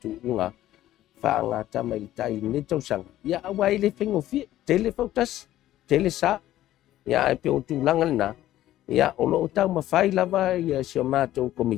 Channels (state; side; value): quieter; right; 13.8 dB